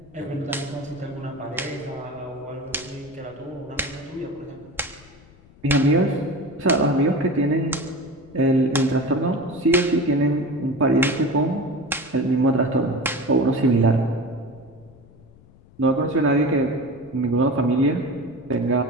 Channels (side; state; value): left; noise; rumble, 25 dB below the sound